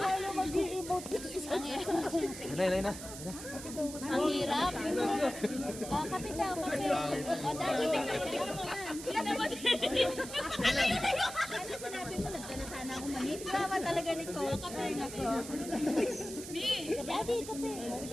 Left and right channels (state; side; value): noise; right; hiss, 11 dB below the sound